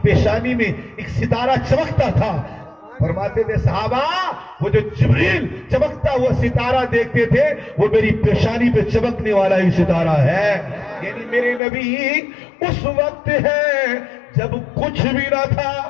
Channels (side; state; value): right; drops out; at 11.6 s